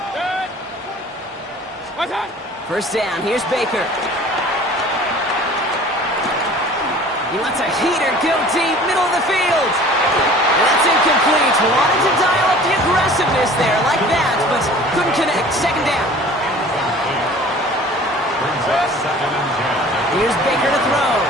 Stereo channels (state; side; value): normal; both; correlation 0.46